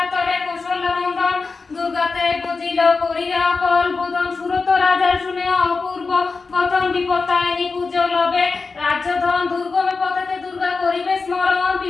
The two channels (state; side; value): quieter; right; 4.3 dB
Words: তরে কৌশল্য নন্দন, দুর্গাতে বুঝিল করিয়া কল বোধন, সুরত রাজার শুনে অপূর্ব গতন, বিপত্তায়নি পূজো লবে রাজ্যধন, দুর্গমে পথেতে দুর্গা করিবে স্মরণ,